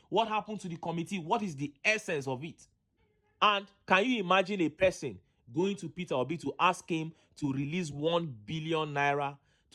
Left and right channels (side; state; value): both; identical; correlation 1.00